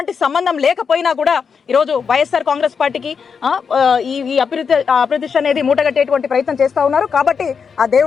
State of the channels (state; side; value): quieter; right; 6.1 dB